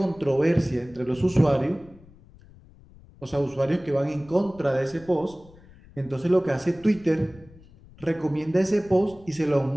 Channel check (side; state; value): left; noise; rumble, 24 dB below the sound